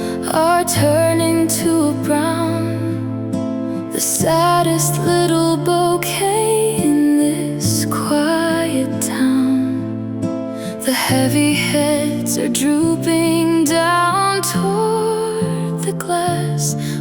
are turning to a brown, the saddest little bouquet in this quiet town. The heavy heads are drooping down toward the glass,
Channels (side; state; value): both; identical; correlation 1.00